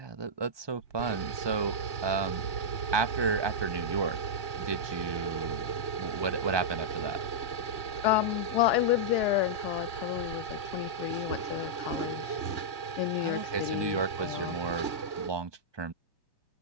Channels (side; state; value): left; late; 1.2 ms